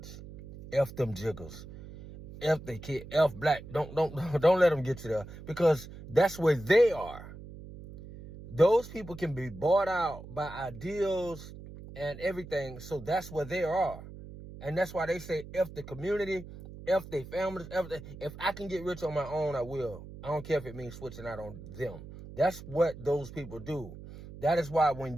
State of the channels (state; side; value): noise; right; hum, 14 dB below the sound